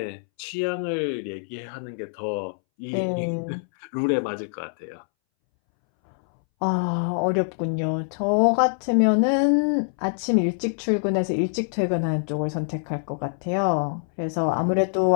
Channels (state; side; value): silent; right; 62 dB below the other